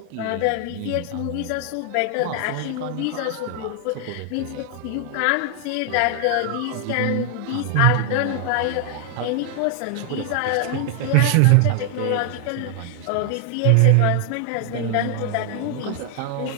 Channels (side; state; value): both; different; correlation 0.00